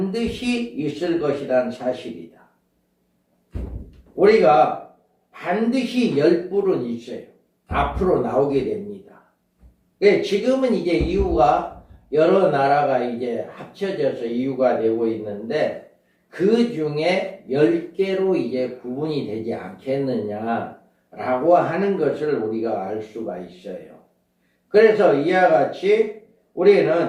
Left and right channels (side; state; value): both; identical; correlation 1.00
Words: 있을 것이라는 사실이다. 우리가 반드시 10뿔은 있어요. 앞으로 나오게 됩니다. 지금은 이제 이유가 여러 나라가 이제 합쳐져서 이유가 되고 있는데 그 중에 10개로 이제 구분이 되지 않겠느냐라고 하는 것을 우리가 알 수가 있어요. 그래서 이와 같이